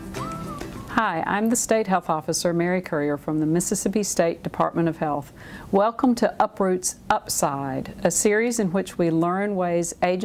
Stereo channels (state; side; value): identical; both; correlation 1.00